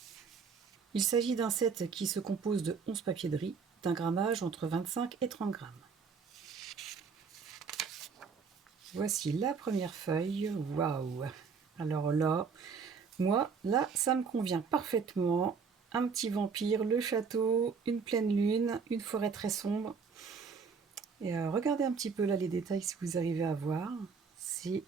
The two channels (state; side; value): quieter; left; 5.6 dB